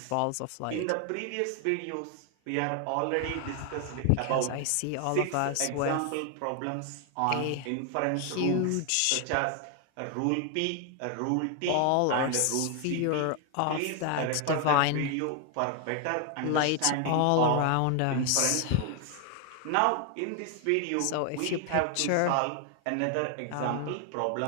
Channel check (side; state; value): both; different; correlation 0.00